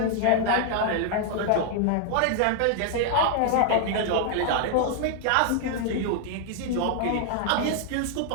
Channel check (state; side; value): different; both; correlation -0.01